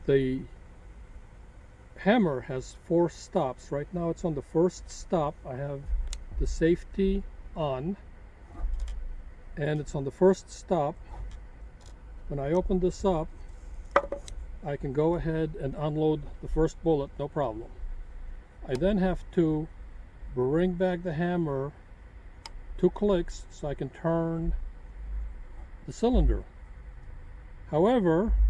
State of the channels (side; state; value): both; identical; correlation 1.00